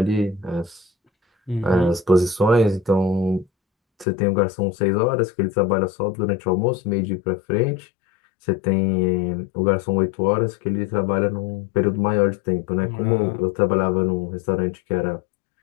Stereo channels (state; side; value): drops out; right; at 4.0 s